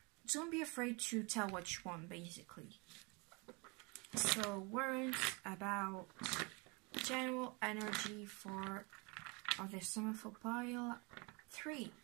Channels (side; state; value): left; quieter; 29.5 dB